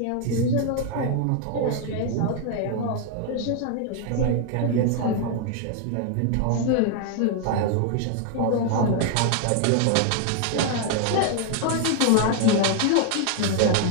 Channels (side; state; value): both; different; correlation 0.00